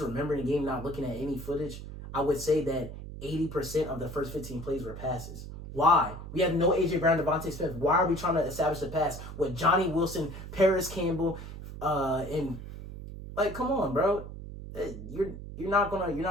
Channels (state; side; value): noise; right; hum, 11 dB below the sound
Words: remembering the game, not looking at any footage, I would say that 80% of the first 15 plays were passes. Why? We have no A.J. Brown, Devontae Smith. Why are we trying to establish the pass with Johnny Wilson, Paris Campbell, and... Like, come on, bro. You're not